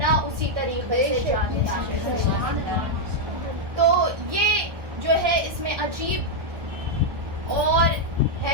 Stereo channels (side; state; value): left; late; 1.3 ms